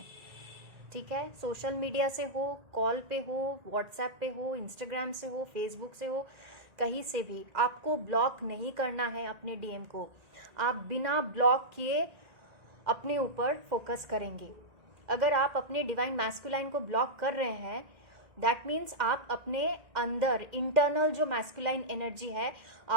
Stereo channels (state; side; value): late; left; 1.9 ms